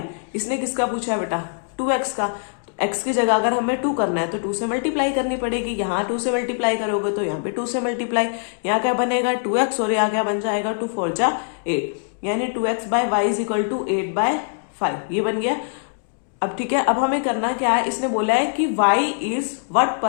इसने किसका पूछा है बेटा? 2x का। तो x की जगह अगर हमें 2 करना है तो 2 से मल्टीप्लाई करनी पड़ेगी। यहाँ 2 से मल्टीप्लाई करोगे तो यहाँ पे 2 से मल्टीप्लाई, यहाँ क्या बनेगा? 2x, और यहाँ क्या बन जाएगा? 2 4 जा 8, यानी 2x by y is equal to 8/5। ये बन गया। अब ठीक है, अब हमें करना क्या है? इसने बोला है कि y is what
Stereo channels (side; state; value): right; silent; digital silence